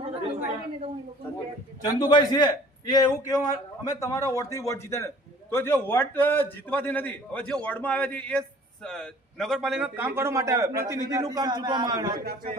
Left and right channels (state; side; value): normal; both; correlation 0.51